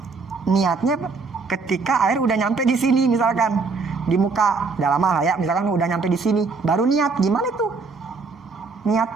niatnya ketika air udah nyampe di sini, misalkan di muka, udah lama lah ya, misalkan udah nyampe di sini, baru niat. Gimana tuh? Niat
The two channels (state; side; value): quieter; left; 4.3 dB